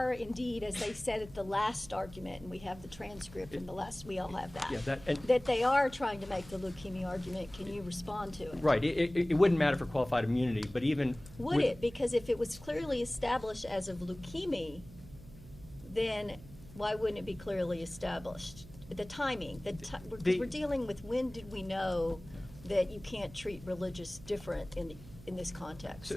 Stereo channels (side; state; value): right; noise; hum, 18 dB below the sound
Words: indeed, as they said at the last argument, and we have the transcript from the last, we all have that, Yeah, that they are trying to make the leukemia argument, can you respond to it? Right. It wouldn't matter for qualified immunity, but even Would with- it? Because if it was clearly established as of leukemia, then why wouldn't it be clearly established? The timing, we're dealing with when did we know that you can't treat religious different in this